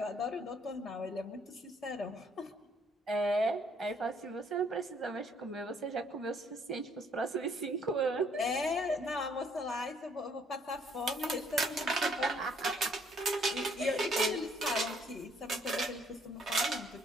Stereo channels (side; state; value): both; normal; correlation 0.65